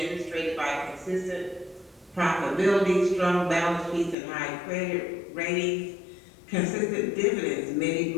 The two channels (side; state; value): right; drops out; at 4.2 s